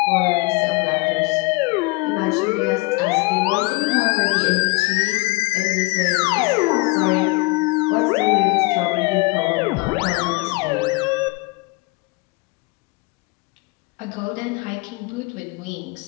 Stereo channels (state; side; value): quieter; right; 25.6 dB